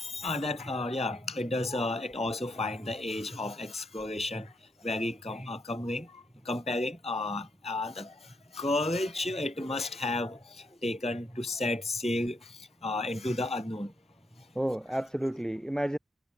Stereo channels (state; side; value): normal; both; correlation 0.77